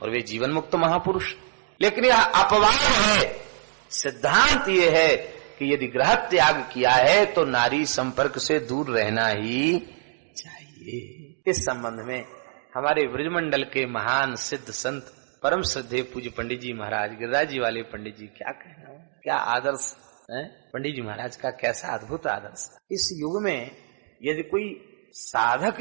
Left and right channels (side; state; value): left; silent; digital silence